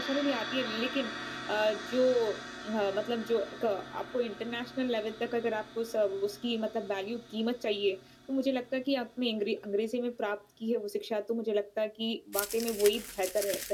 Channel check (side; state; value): both; identical; correlation 1.00